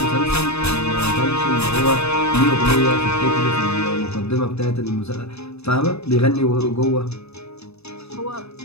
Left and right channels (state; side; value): late; right; 0.79 ms